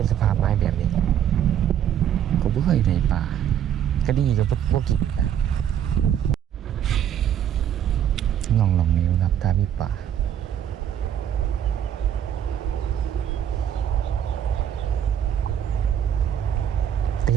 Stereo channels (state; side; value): quieter; left; 9.7 dB